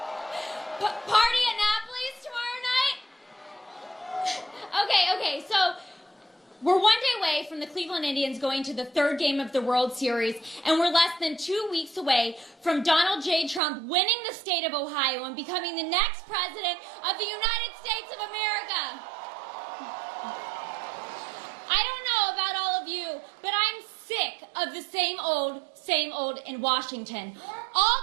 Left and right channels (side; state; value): left; drops out; at 13.6 s